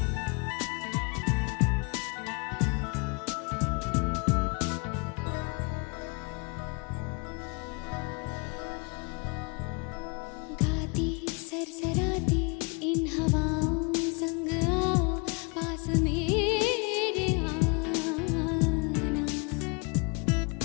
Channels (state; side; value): quieter; right; 32.2 dB